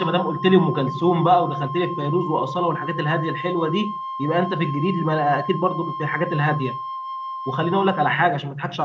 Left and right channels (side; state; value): both; identical; correlation 1.00